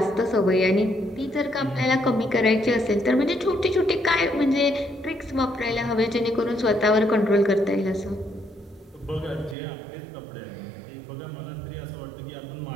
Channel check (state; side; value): drops out; left; at 9.6 s